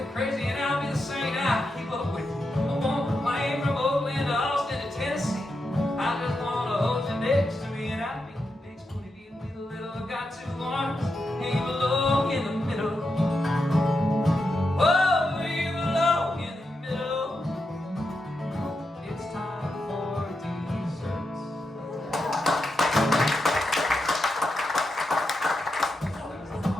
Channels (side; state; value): both; normal; correlation 0.86